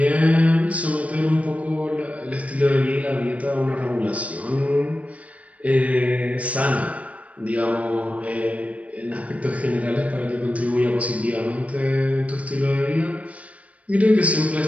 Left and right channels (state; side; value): late; left; 0.067 ms